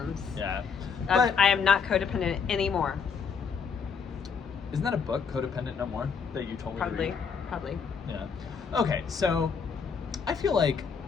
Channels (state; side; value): quieter; right; 6.1 dB